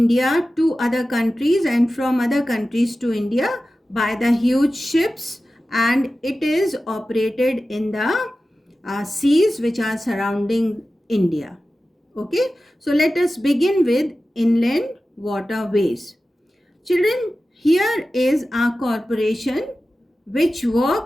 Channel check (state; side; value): normal; both; correlation 0.94